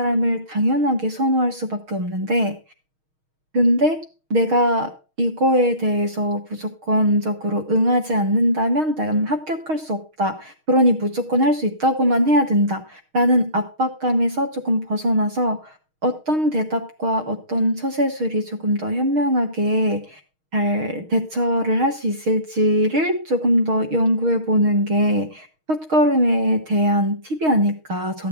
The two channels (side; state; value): left; late; 6.4 ms